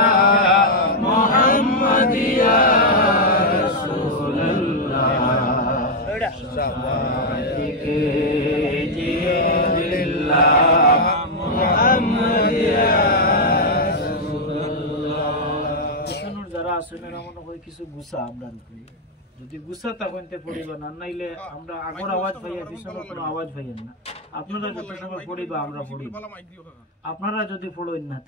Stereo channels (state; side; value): normal; both; correlation -0.01